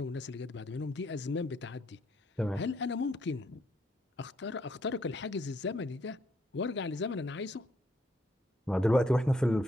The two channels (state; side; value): normal; both; correlation 0.72